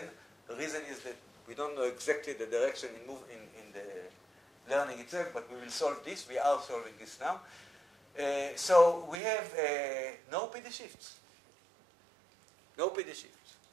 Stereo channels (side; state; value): left; drops out; at 9.2 s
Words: The reason is that we don't know exactly the direction in the learning itself, but we will solve this. We are solving this now. So we have no PD shifts. No PD shifts.